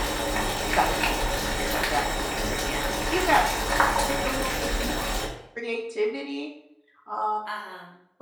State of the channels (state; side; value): identical; both; correlation 1.00